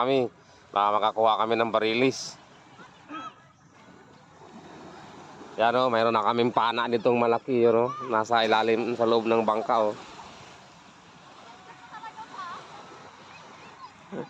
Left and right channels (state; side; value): identical; both; correlation 1.00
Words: kami. Baka makakuha kami ng barilis. Yan o, mayroon na kaming pana nitong malaki. Yun, nasa ilalim sa loob ng bangka. Oo.